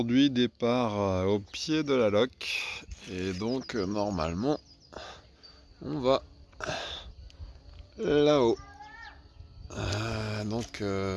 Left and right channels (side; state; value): both; identical; correlation 1.00